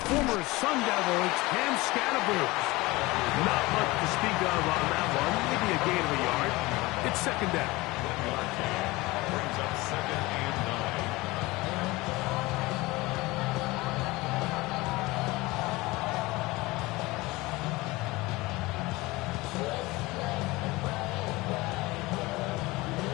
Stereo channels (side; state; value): right; quieter; 21.4 dB